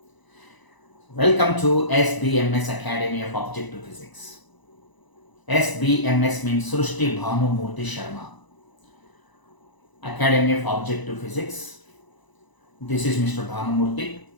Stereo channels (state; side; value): late; right; 1.0 ms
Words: Welcome to SBMS Academy of Objective Physics. SBMS means Srushti BHANU MOORTHY Sharma. Academy of Objective Physics. This is Mr. BHANU MOORTHY,